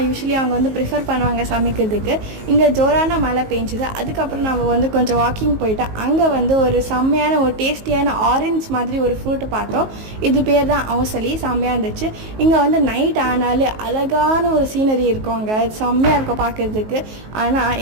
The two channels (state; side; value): late; left; 19 ms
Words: யூஸ்வலி அவங்க வந்து ப்ரிஃபர் பண்ணுவாங்க சமைக்கிறதுக்கு. இங்கே ஜோரான மழை பெஞ்சுது. அதுக்கப்புறம் நம்ம வந்து கொஞ்சம் வாக்கிங் போயிட்டோம். அங்கே வந்து ஒரு செம்மையான ஒரு டேஸ்டியான ஆரஞ்ச் மாதிரி ஒரு ஃப்ரூட்டு பார்த்தோம். இது பேர் தான் அவசலி. செம்மையாக இருந்துச்சு. இங்கே வந்து நைட் ஆனாலே அழகான ஒரு சீனரி இருக்கும். அங்கே செம்மையாக இருக்கும் பார்க்குறதுக்கு. ஆனால்